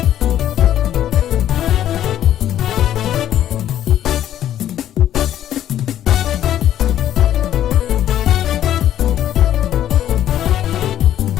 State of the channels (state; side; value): quieter; right; 11.5 dB